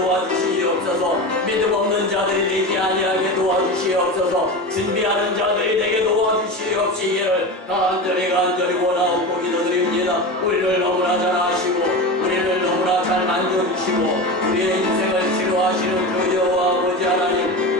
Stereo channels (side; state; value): both; normal; correlation 0.25